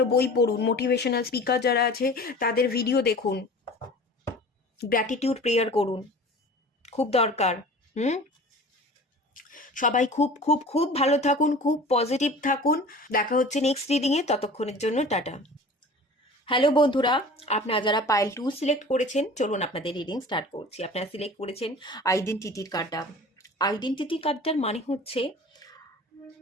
বই পড়ুন, মোটিভেশনাল স্পিকার যারা আছে তাদের ভিডিও দেখুন, গ্র্যাটিটিউড প্রেয়ার করুন, খুব দরকার। হুম, সবাই খুব খুব খুব ভালো থাকুন, খুব পজিটিভ থাকুন। দেখা হচ্ছে নেক্সট রিডিংয়ে, ততক্ষণের জন্য টাটা। হ্যালো বন্ধুরা, আপনারা যারা পাইল 2 সিলেক্ট করেছেন, চলুন আপনাদের রিডিং স্টার্ট করছি। আপনারা সিলেক্ট করেছেন আইডেন্টিটির কার্ডটা। আইডেন্টিটি কার্ডটার মানে হচ্ছে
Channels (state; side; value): normal; both; correlation 0.41